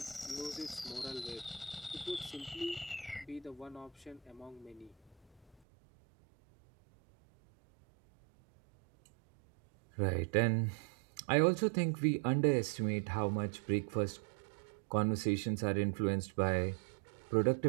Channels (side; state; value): left; drops out; at 5.6 s